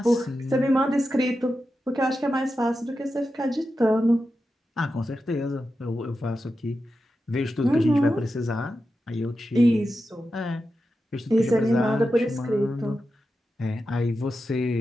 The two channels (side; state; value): both; normal; correlation 0.90